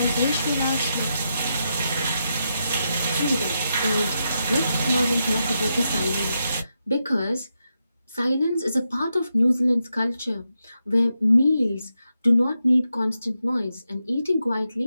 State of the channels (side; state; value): both; inverted; correlation -0.85